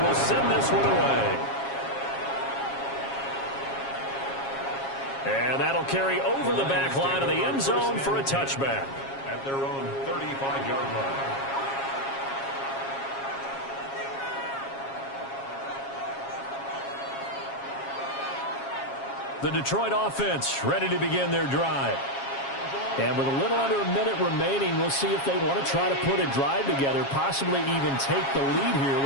send this one away. And that'll carry over the back line of the end zone for a touchback. At their own 35-yard line. The Detroit offense ready to begin their drive. And with a little under a minute remaining, we'll see if they want to try to put a drive together, possibly even take the lead here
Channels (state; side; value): late; right; 7.3 ms